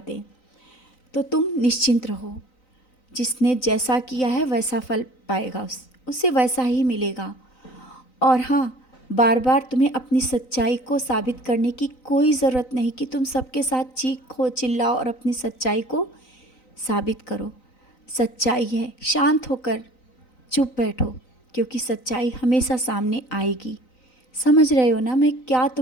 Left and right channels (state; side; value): late; right; 3.9 ms